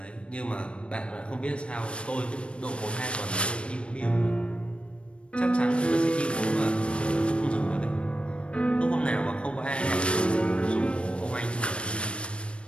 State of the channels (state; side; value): late; right; 0.058 ms